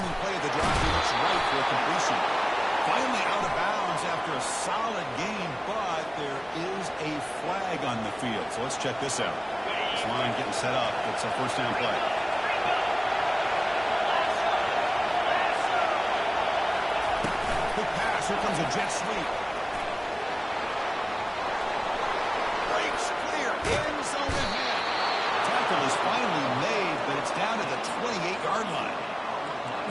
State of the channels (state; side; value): identical; both; correlation 1.00